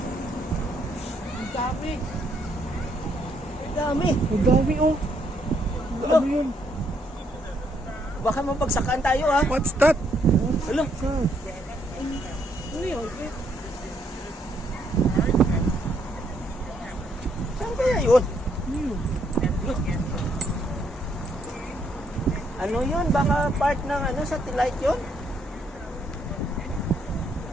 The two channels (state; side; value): normal; both; correlation 0.72